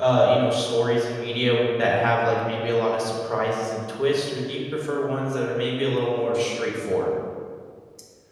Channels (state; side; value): identical; both; correlation 1.00